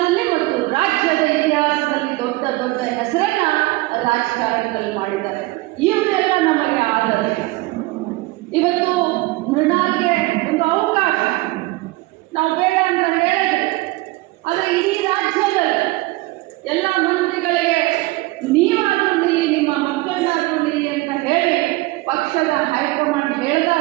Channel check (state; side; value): quieter; left; 20.8 dB